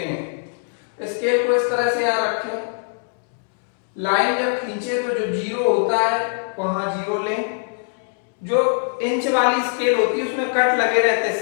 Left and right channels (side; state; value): right; silent; 64 dB below the other